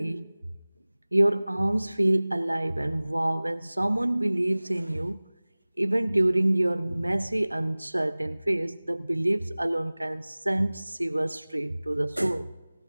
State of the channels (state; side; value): inverted; both; correlation -0.99